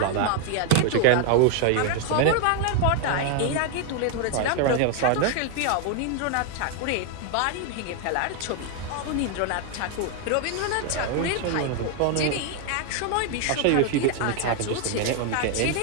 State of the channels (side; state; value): both; different; correlation 0.00